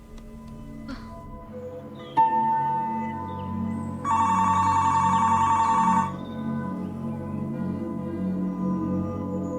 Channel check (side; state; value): both; identical; correlation 1.00